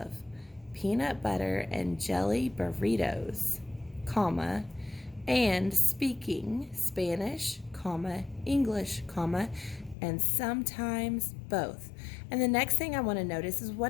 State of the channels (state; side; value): drops out; right; at 10.0 s